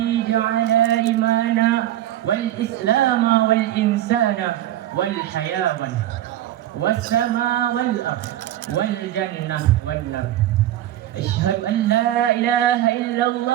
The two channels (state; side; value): quieter; left; 13.0 dB